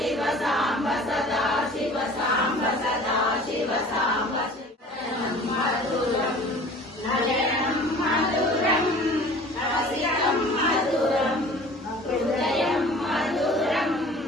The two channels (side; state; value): both; normal; correlation 0.45